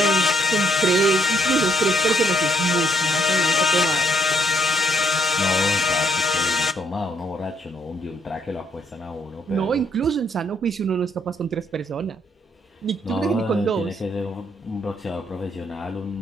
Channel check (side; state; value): both; normal; correlation 0.70